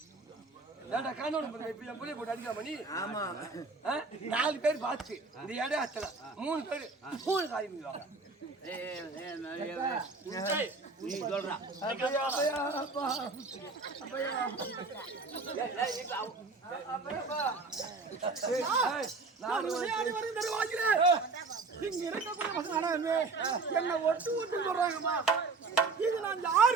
ஏன்டா காணோட இப்ப என் பிள்ளைய போட்டு அடிக்கலாமா நீ? ஆமா 4 பேர் பார்த்து இந்த இடம் அத்தல 3 பேர் 3 காரியம் பண்ணுவாங்க. நீ சொல்றா இங்க இருக்கக்கூடிய என்ன ஒட்டு ஒட்டு சொல்றாங்கம்மா. இது நான்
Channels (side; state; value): left; quieter; 4.0 dB